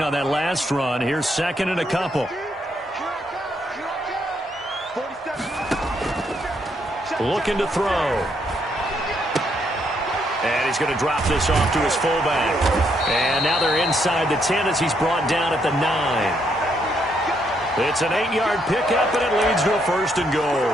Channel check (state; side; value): normal; both; correlation 0.74